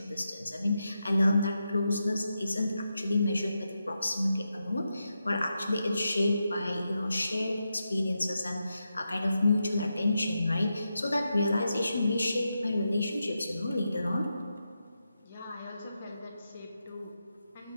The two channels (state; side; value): inverted; both; correlation -0.87